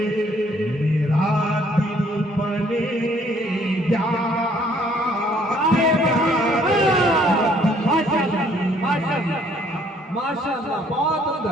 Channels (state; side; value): normal; both; correlation 0.62